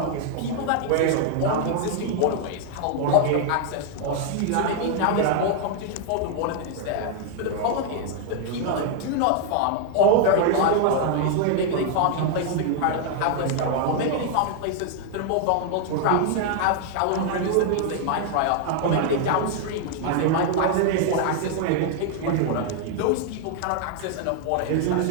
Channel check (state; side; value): different; both; correlation 0.00